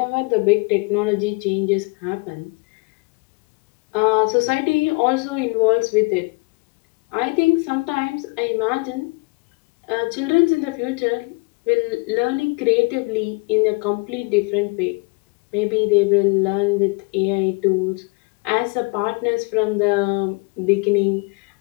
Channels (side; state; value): right; quieter; 29.1 dB